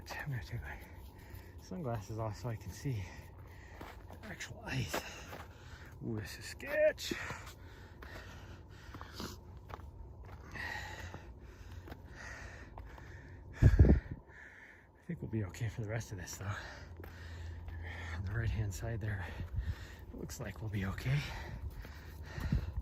I'm going to take my sunglasses off so I can see the actual ice. Ooh, this is sketch. I think we'll be okay for the rest of this though. On the right hand side there, it looks like we'll be okay.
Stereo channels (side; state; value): both; identical; correlation 1.00